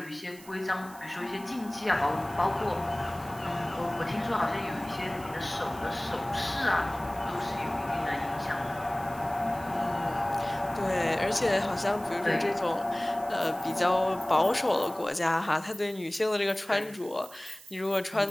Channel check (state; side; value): noise; right; hiss, 20 dB below the sound